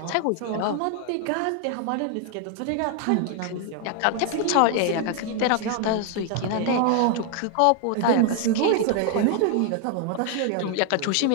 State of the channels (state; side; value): different; both; correlation 0.00